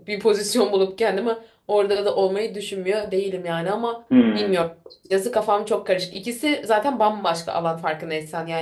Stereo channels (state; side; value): identical; both; correlation 1.00